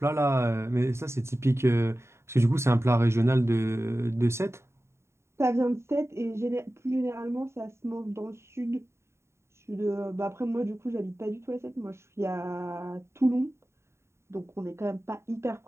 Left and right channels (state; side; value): late; left; 0.13 ms